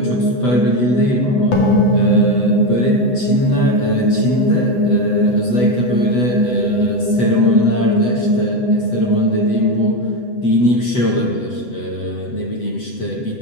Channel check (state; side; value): late; right; 7.9 ms